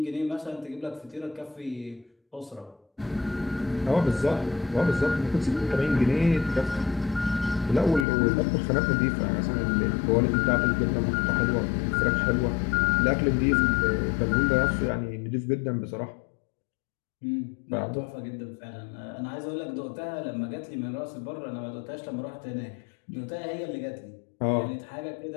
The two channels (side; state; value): right; drops out; at 8.1 s